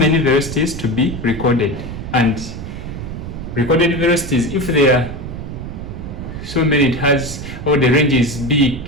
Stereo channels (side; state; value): right; noise; rumble, 8 dB below the sound